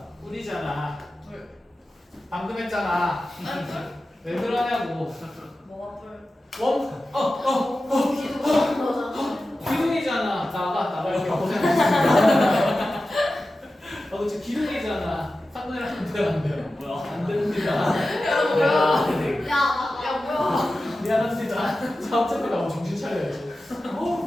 꿀이잖아. 불. 방금 했잖아. 왜 그러냐고. 뭐가 불? 기둥이잖아. 나갈게. 고생했습니다. 그치, 기둥이잖아. 3분의 1 하면 돼요, 안 돼요? 뭐야? 안 됩니다. 야, 뭐야? 미안합니다. 자, 어차피 나 정신 차려야지.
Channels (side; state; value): both; normal; correlation 0.94